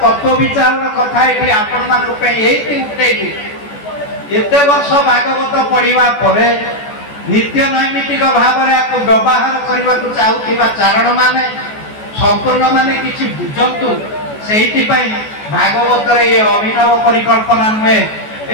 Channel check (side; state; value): right; late; 14 ms